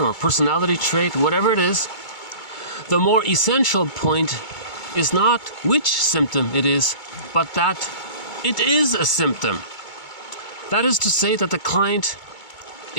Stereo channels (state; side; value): late; right; 2.2 ms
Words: or personality trait, whatever it is, the more essential point is not which symptom it is, but that it is a symptom. That is to say that the client